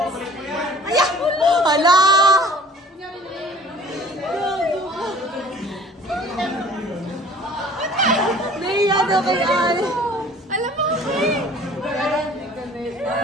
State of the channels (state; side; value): normal; both; correlation 0.49